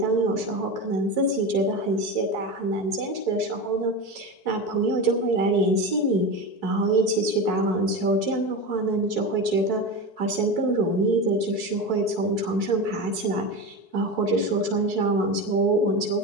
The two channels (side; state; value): right; late; 4.6 ms